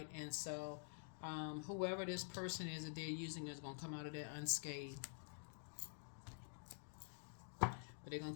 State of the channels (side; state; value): right; silent; digital silence